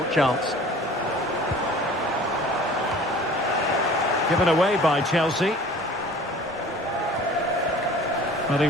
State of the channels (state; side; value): normal; both; correlation 0.46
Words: chance. Given away by Chelsea. Well, he